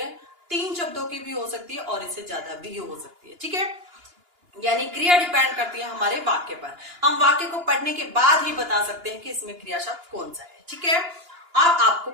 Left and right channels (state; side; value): late; left; 2.9 ms